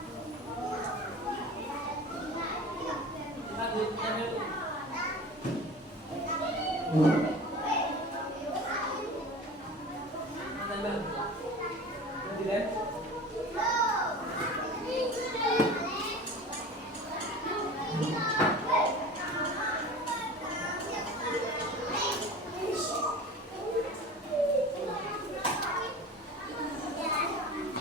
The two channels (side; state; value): both; normal; correlation 0.36